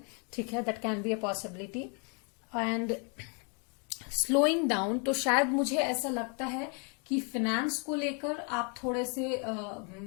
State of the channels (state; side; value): quieter; right; 37.1 dB